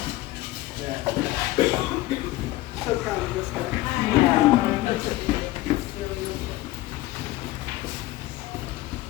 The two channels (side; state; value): right; quieter; 17.3 dB